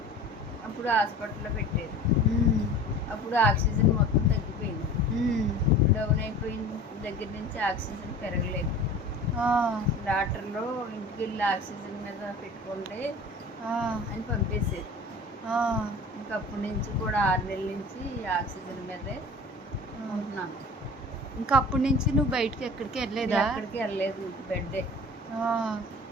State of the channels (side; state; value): both; normal; correlation 0.40